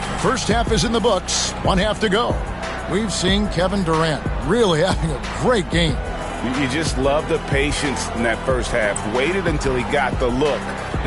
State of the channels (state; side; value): identical; both; correlation 1.00